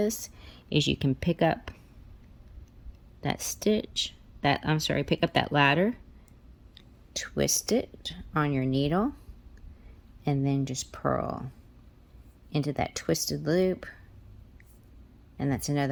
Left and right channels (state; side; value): identical; both; correlation 1.00